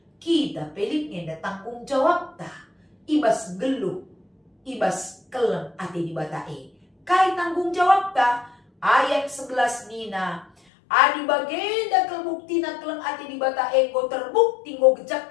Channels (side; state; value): right; drops out; at 10.5 s